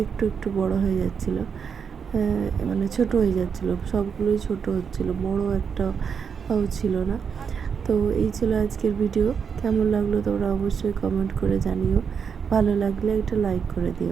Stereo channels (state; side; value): quieter; left; 6.6 dB